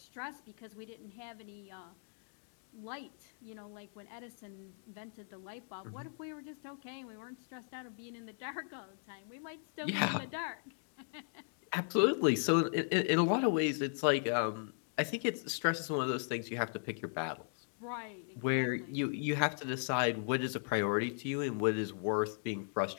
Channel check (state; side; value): silent; right; digital silence